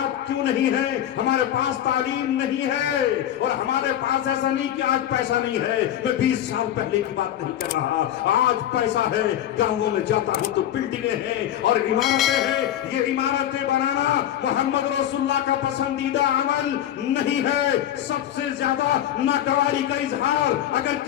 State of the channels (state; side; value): quieter; right; 11.5 dB